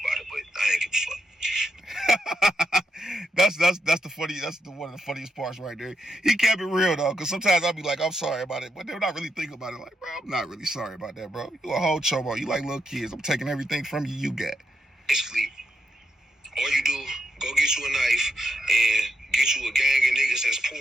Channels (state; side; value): normal; both; correlation 0.82